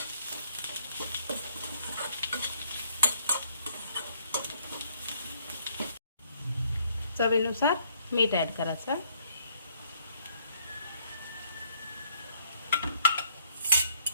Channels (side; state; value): both; inverted; correlation -0.66